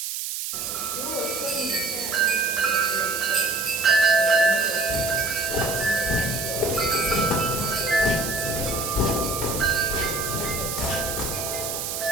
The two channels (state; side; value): noise; right; hiss, 4 dB below the sound